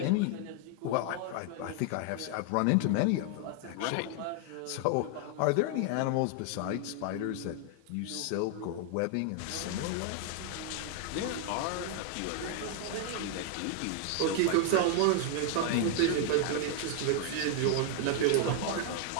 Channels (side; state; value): both; different; correlation 0.00